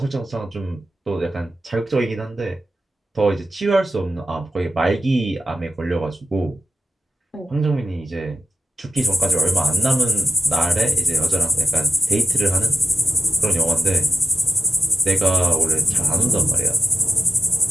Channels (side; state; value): both; normal; correlation 0.90